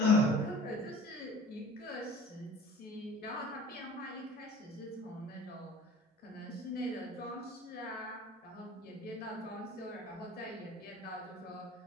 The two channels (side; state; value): both; normal; correlation 0.46